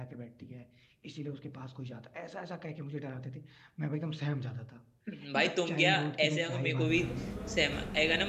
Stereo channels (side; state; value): both; identical; correlation 1.00